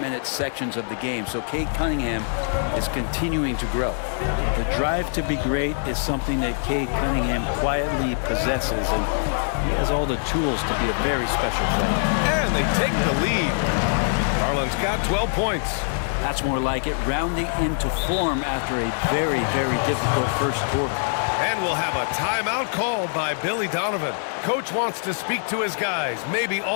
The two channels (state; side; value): silent; right; digital silence